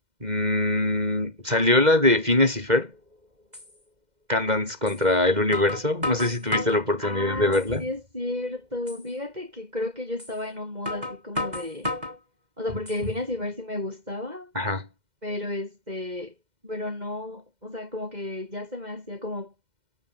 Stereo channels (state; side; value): late; left; 2.1 ms